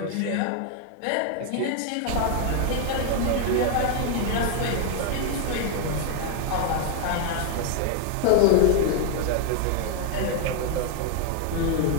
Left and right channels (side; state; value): both; different; correlation 0.01